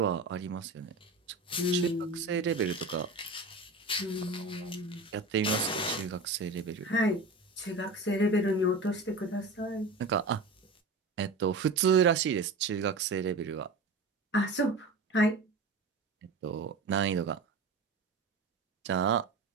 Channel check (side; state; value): left; quieter; 3.2 dB